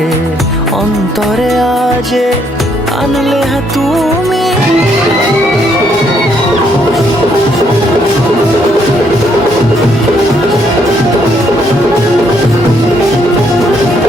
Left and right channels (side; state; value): both; normal; correlation 0.71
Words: অন্তরে আজে, আনলে তুমি